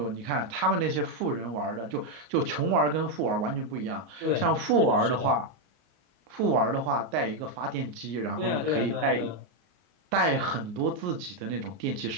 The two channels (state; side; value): late; left; 34 ms